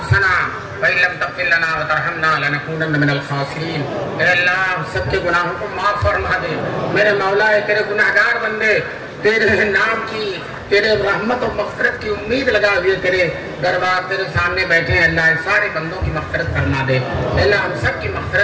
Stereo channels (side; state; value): both; identical; correlation 1.00